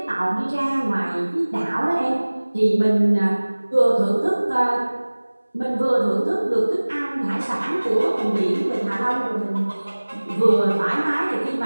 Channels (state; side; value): inverted; both; correlation -1.00